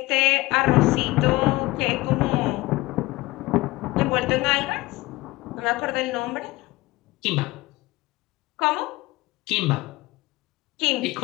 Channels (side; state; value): right; quieter; 20.2 dB